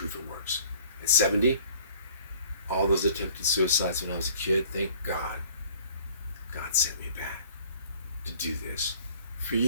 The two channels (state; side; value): inverted; both; correlation -0.52